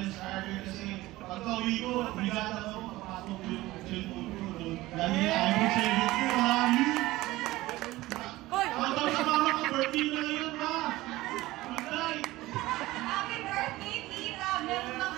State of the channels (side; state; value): left; quieter; 18.1 dB